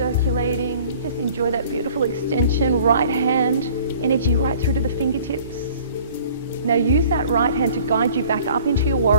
Just enjoy that beautiful extension. Right hand, energy right through to the fingertips. Now use that right hand to guide you back up into your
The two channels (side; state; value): both; inverted; correlation -0.50